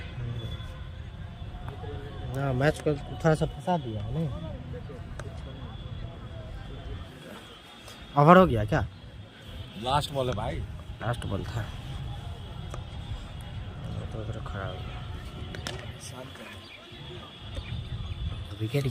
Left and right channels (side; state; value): both; identical; correlation 1.00